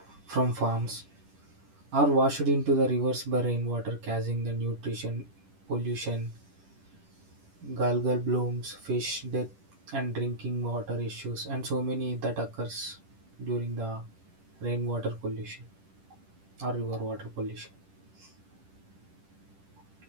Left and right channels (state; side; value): late; left; 10 ms